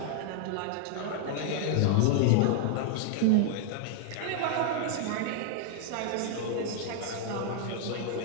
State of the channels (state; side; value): different; both; correlation 0.00